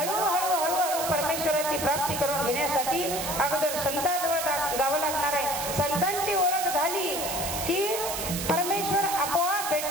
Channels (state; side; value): noise; right; hiss, 4 dB below the sound